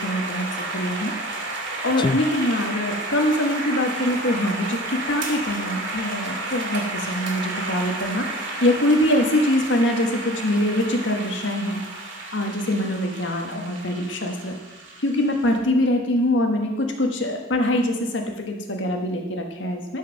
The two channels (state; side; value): normal; both; correlation 0.44